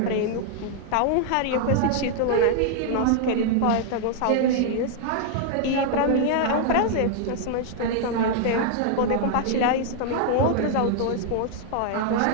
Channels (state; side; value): different; both; correlation 0.00